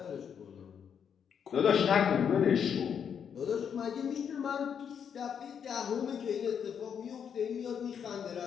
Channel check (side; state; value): right; quieter; 7.7 dB